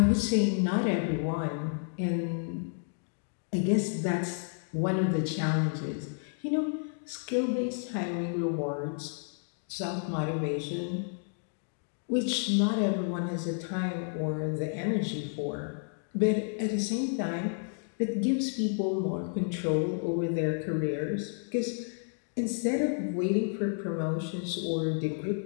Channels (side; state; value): right; silent; 57 dB below the other